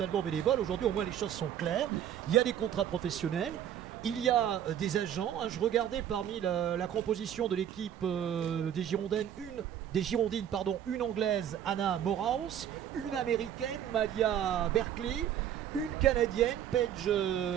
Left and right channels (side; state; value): left; quieter; 10.1 dB